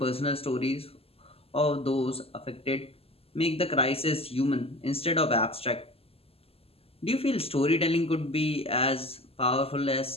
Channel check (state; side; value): late; right; 0.28 ms